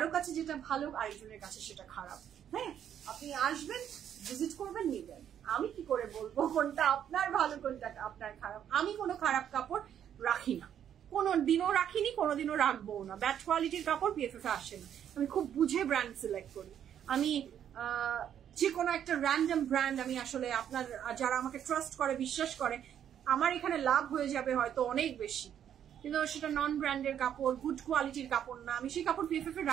কাছে যেটা ভালো, আরেকজনের কাছে সেটা খারাপ। হ্যাঁ, আপনি আসবেন, ভিজিট করবেন, নিবেন। আমি কি করে বলবো কোনটা আপনার ভালো কোনটা আপনার খারাপ? আমি কোনো খারাপ কাপড় রাখি না, কোনোদিনও রাখিনি, কোনোদিনও রাখবো না। ব্যাড কোয়ালিটির কাপড় পিএফএফ এ আসে না। আমি খুব বুঝে ব্র্যান্ড সিলেক্ট করি। আমি যে কোনো একটা র্যান্ডম ব্র্যান্ড আমি আসলে, আপনার যারা আমাকে ট্রাস্ট করে, বিশ্বাস করে, আমার এখানে লাভ হয়ে যাবে হয়তো অনেক বেশি, কিন্তু সেটা নন ব্র্যান্ডের কাপড়, গুড কোয়ালিটির কাপড় না, আমি সেই কাপড় পিএফএফ এ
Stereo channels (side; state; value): left; quieter; 9.6 dB